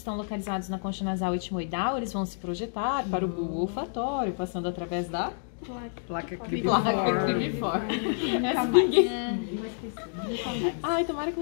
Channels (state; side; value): silent; right; digital silence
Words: localizados na concha nasal etimoidal, eles vão se projetar para o bulbo olfatório, passando através da Placa placa cribiforme. Essa ninguém... Ai, tomara que